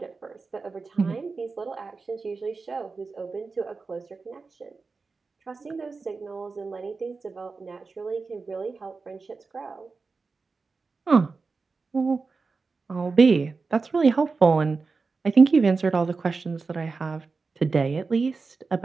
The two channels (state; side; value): quieter; left; 4.3 dB